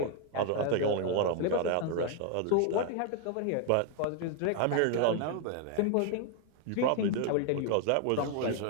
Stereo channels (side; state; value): both; different; correlation 0.00